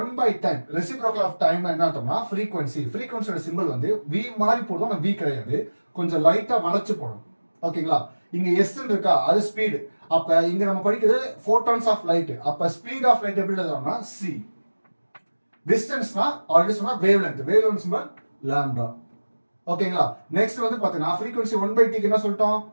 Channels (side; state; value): both; inverted; correlation -1.00